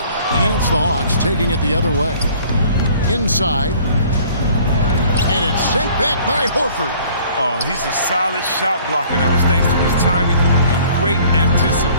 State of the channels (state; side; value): inverted; both; correlation -0.54